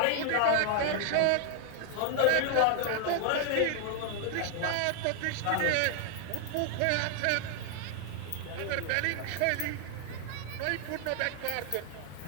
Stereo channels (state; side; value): different; both; correlation 0.00